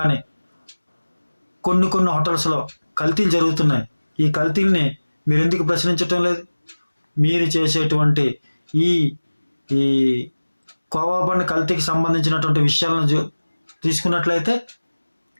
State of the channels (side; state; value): both; inverted; correlation -1.00